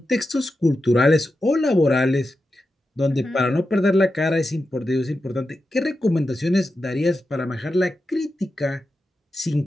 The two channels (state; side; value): normal; both; correlation 0.90